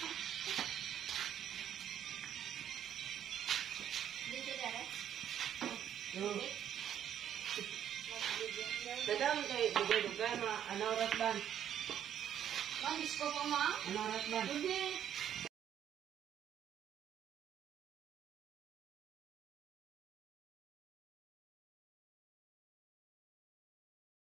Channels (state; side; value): quieter; left; 9.8 dB